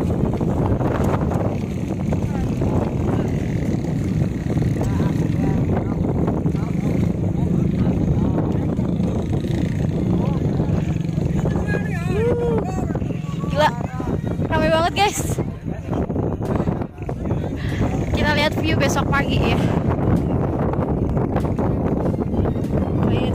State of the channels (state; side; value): identical; both; correlation 1.00